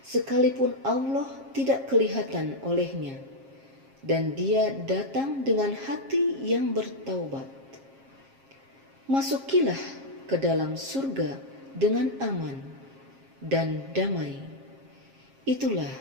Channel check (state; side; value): late; left; 7.4 ms